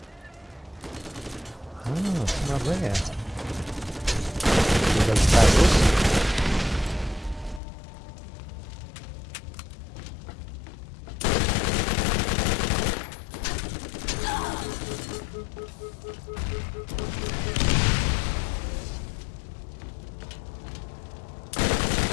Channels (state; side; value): drops out; right; at 7.6 s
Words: Ah, some up there. With those barrels.